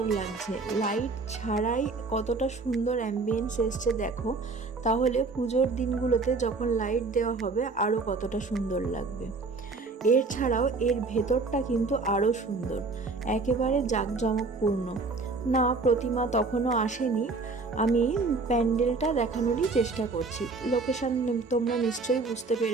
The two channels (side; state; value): left; quieter; 3.9 dB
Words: লাগছে। লাইট ছাড়াই কতটা সুন্দর অ্যাম্বিয়েন্স এসছে দেখো। তাহলে পুজোর দিনগুলোতে যখন লাইট দেওয়া হবে আরও কতটা সুন্দর লাগবে। এর ছাড়াও এর ভেতরটা কিন্তু আরও সুন্দর, একেবারে জাঁকজমকপূর্ণ। না, প্রতিমা তখনও আসেনি, আমি প্যান্ডেলটা দেখানোরই চেষ্টা করছি। লোকেশন তোমরা নিশ্চয়ই বুঝতে